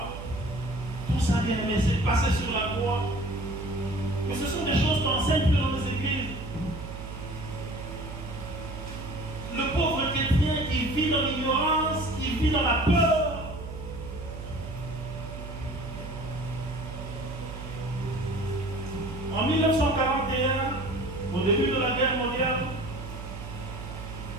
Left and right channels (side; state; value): right; noise; hum, 10 dB below the sound